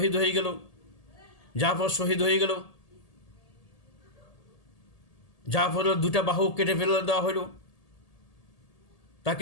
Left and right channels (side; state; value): right; late; 1.8 ms